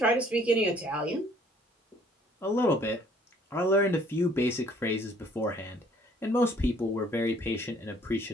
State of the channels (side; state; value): both; normal; correlation 0.59